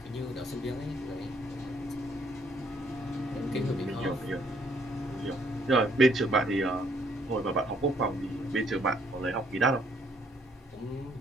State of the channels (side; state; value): both; normal; correlation 0.66